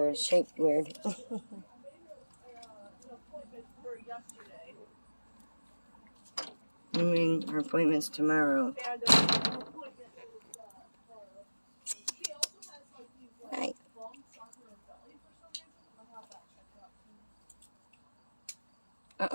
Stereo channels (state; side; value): inverted; both; correlation -1.00